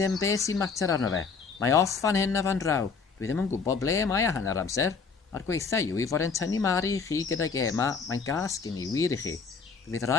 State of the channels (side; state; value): right; quieter; 5.2 dB